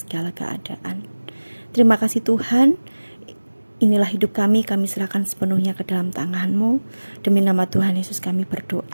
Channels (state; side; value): inverted; both; correlation -1.00